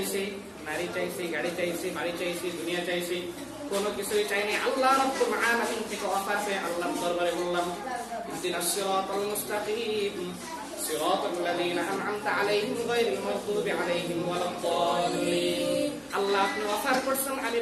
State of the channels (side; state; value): both; identical; correlation 1.00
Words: নারী চাইছি, গাড়ি চাইছি, বাড়ি চাইছি, দুনিয়া চাইছি, কোনো কিছুই চাইনি। আল্লাহ রাব্বুল আলামিন থেকে অফার পেয়ে আল্লাহর দরবারে বললাম ইহদিনাস সিরাতাল মুস্তাকিম সিরাতাল লাযীনা আন'আমতা আলাইহিম গায়রিল মাগদুবি আলাইহিম ওয়ালাদ-দাল্লিন। আল্লাহ আপনি অফার করছেন, আমি